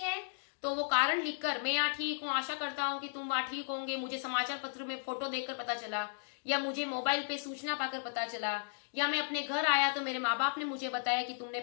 तो वो कारण लिखकर, मैं यहाँ ठीक हूँ, आशा करता हूँ कि तुम वहां ठीक होंगे, मुझे समाचार पत्र में फोटो देखकर पता चला, या मुझे मोबाइल पे सूचना पाकर पता चला, या मैं अपने घर आया तो मेरे माँ बाप ने मुझे बताया कि तुमने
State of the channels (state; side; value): silent; right; digital silence